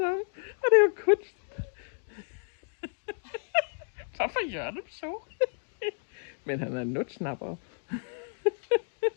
om. Og det er jo kunst. Hvorfor gør det så? Men han er en nutsnapper.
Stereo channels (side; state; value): right; silent; digital silence